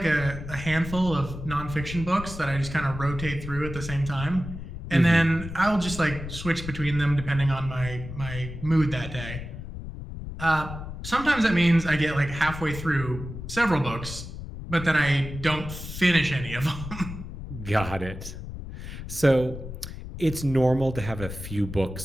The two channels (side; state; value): left; noise; rumble, 9 dB below the sound